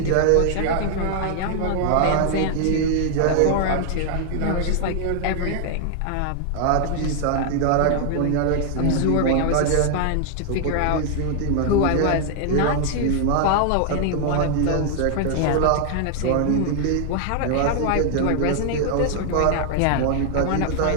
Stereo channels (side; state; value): both; different; correlation 0.00